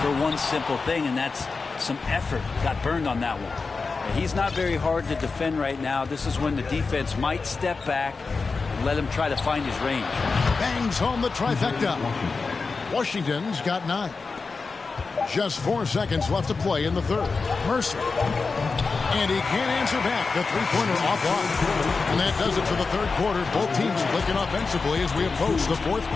for one simple thing, and that's some effort. Got burned on that one. He's not very hard to defend right now. This is when the defense might step back and let him try to find his range. Bangs home the trifecta. Washington's got 9. Just 4 seconds left to play in the third. Mercer. And he can't answer back. The three-pointer offline. And that does it for the third quarter. Both teams clicking offensively as we approach the fourth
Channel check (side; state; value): right; quieter; 4.4 dB